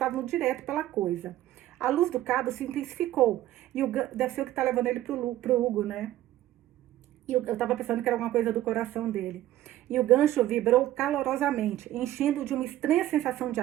direto pela coisa. A luz do cabo se intensificou. E deve ser o que está levando ele pro Hugo, né? E eu estava pensando que era alguma coisa do coração dele. E o gancho vibrou calorosamente, enchendo-o de uma estranha sensação de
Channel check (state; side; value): quieter; left; 14.1 dB